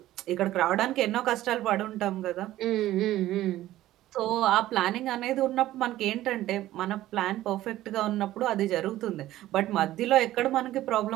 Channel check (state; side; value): quieter; left; 14.7 dB